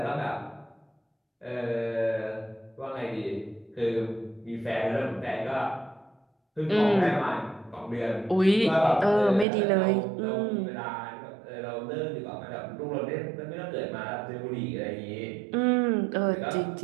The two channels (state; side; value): drops out; left; at 9.5 s